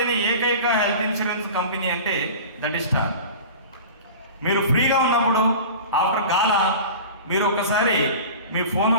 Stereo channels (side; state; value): both; inverted; correlation -0.36